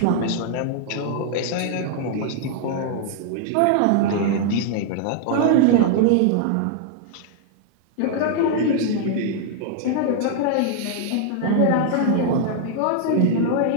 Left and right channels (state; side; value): different; both; correlation -0.01